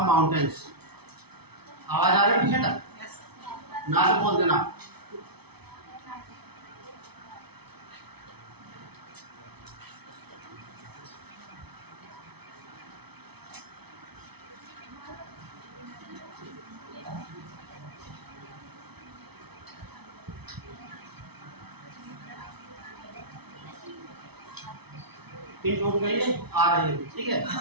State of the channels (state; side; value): late; left; 0.98 ms